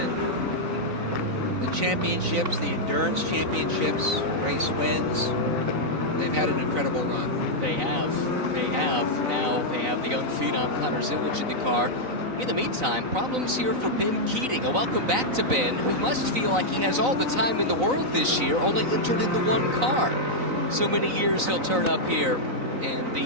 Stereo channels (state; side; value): late; left; 3.9 ms